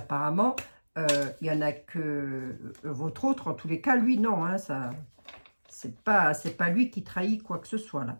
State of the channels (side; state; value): both; inverted; correlation -1.00